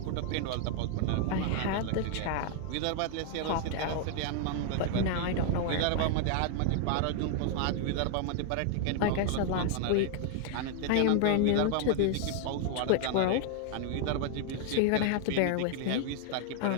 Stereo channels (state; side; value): different; both; correlation 0.00